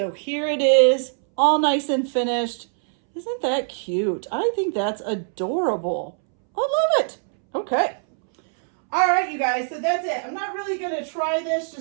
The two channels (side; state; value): left; silent; 64 dB below the other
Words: here it is, all nice and finished. Isn't that cute? I think that's adorable. I love it. Okay. All right, you guys, so that's it. I'm not really going to try this